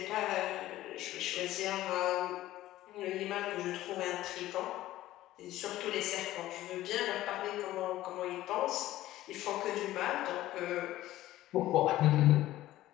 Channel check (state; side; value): quieter; right; 15.1 dB